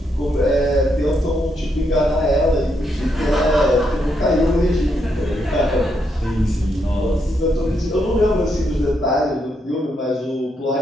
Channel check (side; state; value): both; normal; correlation 0.78